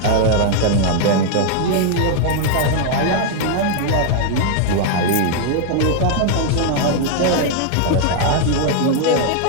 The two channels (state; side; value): different; both; correlation 0.00